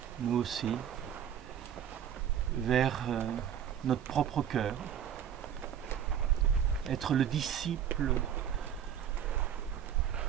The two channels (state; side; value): quieter; left; 9.2 dB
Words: nous aussi, vers notre propre cœur, être le disciple